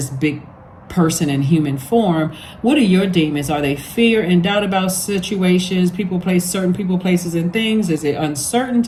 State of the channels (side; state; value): both; identical; correlation 1.00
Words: big person in human form. What are your demons? Are they fear and doubt about situations, certain people, places, and things? Is it